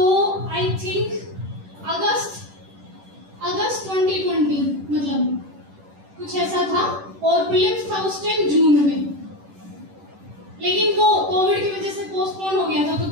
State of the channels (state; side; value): late; left; 10 ms